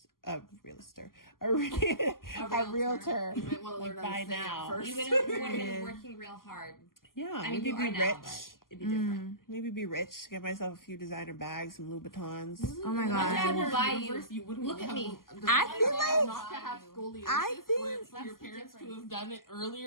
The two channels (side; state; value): right; late; 0.91 ms